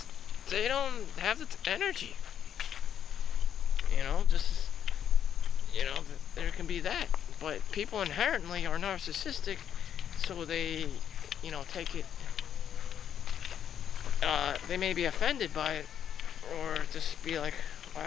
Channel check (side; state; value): right; quieter; 9.3 dB